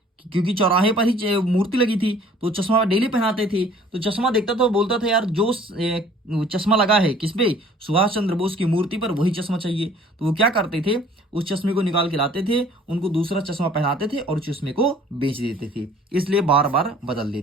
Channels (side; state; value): both; normal; correlation 0.53